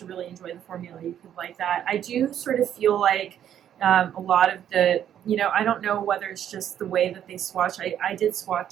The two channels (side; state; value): left; quieter; 10.1 dB